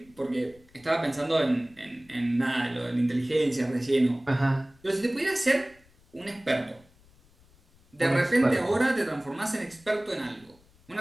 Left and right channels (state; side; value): noise; left; rumble, 29 dB below the sound